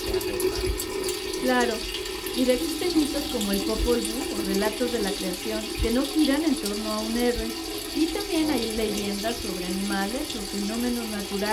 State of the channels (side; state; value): both; identical; correlation 1.00